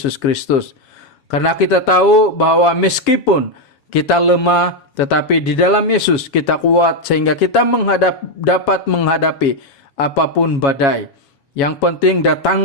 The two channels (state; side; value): late; right; 7.2 ms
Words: Kristus. Karena kita tahu bahwa meskipun kita lemah, tetapi di dalam Yesus kita kuat sehingga kita dapat menghadapi apapun badai. Yang penting